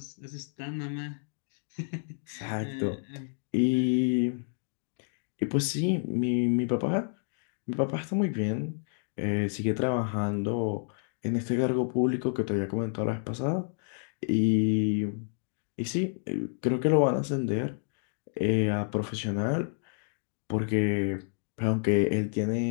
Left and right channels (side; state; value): right; silent; digital silence